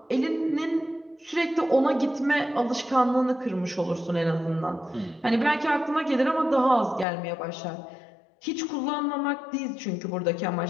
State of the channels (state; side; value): drops out; right; at 7.1 s